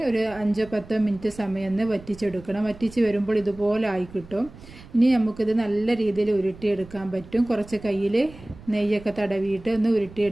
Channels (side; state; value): right; noise; rumble, 19 dB below the sound